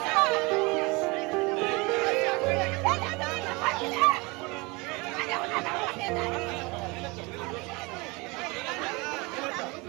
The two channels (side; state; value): left; quieter; 26.0 dB